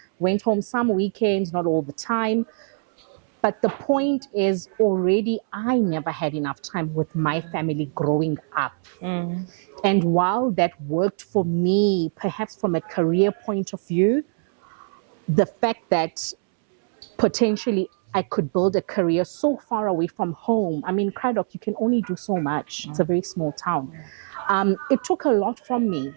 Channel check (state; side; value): silent; left; 63 dB below the other